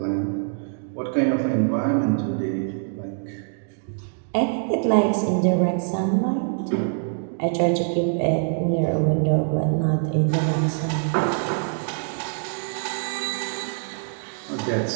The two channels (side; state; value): left; silent; 62 dB below the other